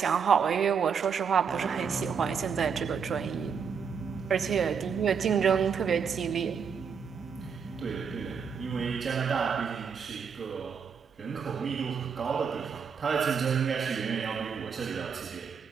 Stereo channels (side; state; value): left; quieter; 6.4 dB